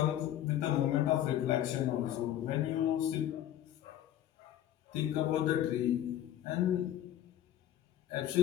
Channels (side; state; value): right; quieter; 12.0 dB